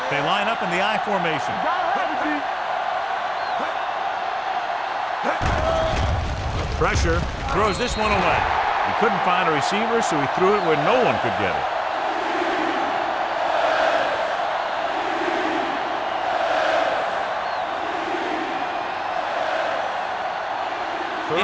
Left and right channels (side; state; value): both; identical; correlation 1.00